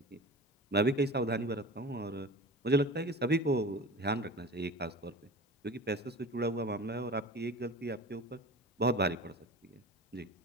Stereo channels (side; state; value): both; normal; correlation 0.35